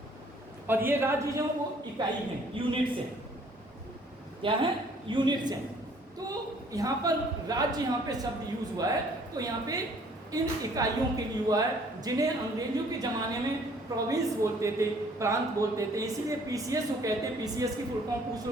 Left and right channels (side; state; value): both; normal; correlation 0.59